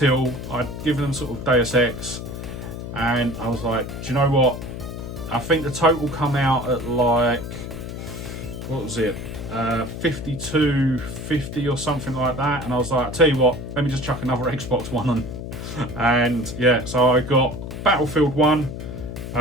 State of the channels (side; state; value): left; noise; hum, 8 dB below the sound